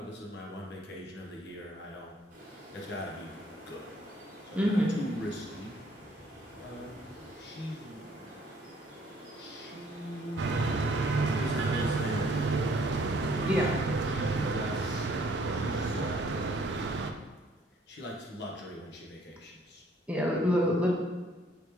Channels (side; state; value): both; normal; correlation 0.62